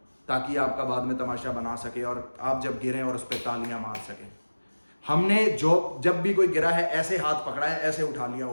ताकि आपका बाद में तमाशा बना सके और आप जब गिरें और उस पर तालियां मार सकें। हमने जब भी कोई गिरा है ऐसे हाथ पकड़ा है, ऐसे उठा लिया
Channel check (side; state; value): both; inverted; correlation -1.00